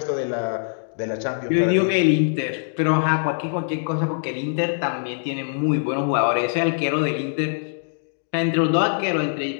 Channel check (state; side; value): silent; right; digital silence